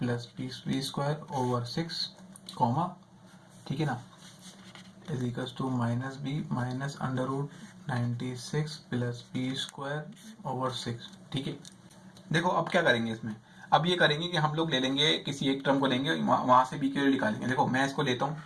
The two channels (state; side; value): identical; both; correlation 1.00